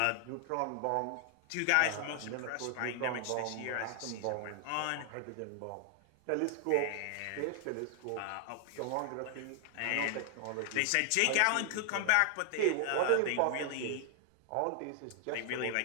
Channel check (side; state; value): both; different; correlation 0.00